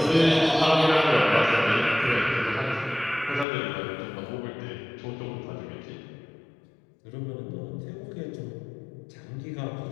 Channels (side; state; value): right; drops out; at 3.5 s